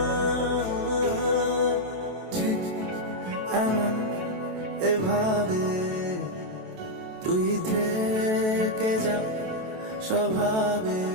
ঠিক এমন এভাবে তুই থেকে যা স্বভাবে।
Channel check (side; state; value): left; late; 28 ms